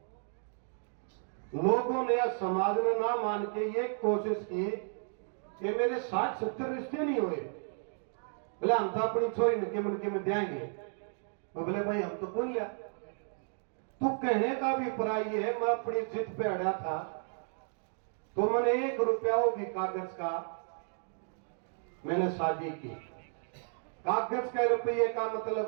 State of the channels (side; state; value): left; silent; 56 dB below the other